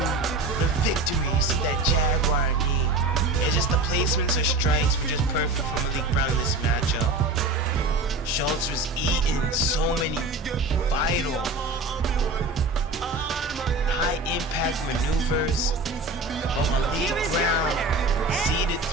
the victory. You see that Jaguar knee. It's just the placements of strikes were just perfect for Malik Brown in this matchup. Schultz was eating so many vital high impact maneuvers, but Malik Brown seeded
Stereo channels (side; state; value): left; quieter; 3.0 dB